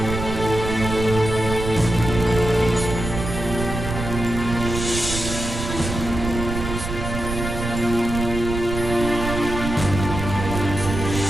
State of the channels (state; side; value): noise; right; rumble, 5 dB below the sound